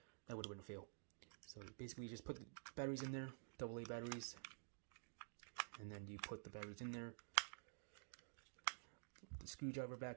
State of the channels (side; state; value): left; silent; digital silence